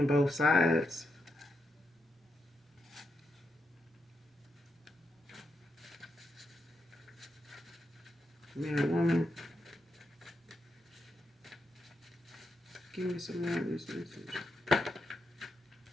both sides. Man or woman. Give me some more of this message.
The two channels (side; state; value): both; normal; correlation 0.84